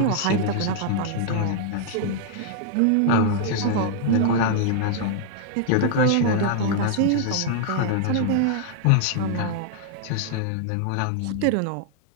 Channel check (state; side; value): different; both; correlation -0.01